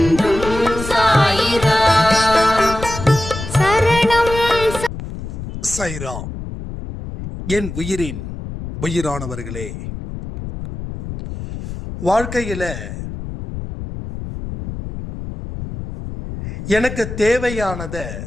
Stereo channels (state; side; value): noise; left; rumble, 8 dB below the sound